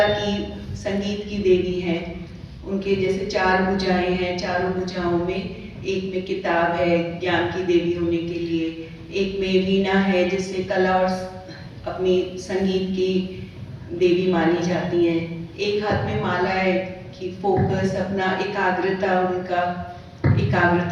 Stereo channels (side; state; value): both; identical; correlation 1.00